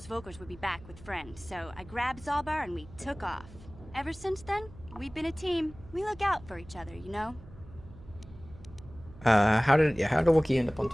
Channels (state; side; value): noise; right; hum, 19 dB below the sound